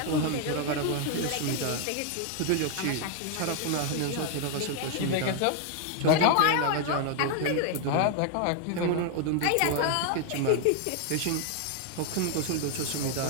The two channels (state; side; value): different; both; correlation 0.00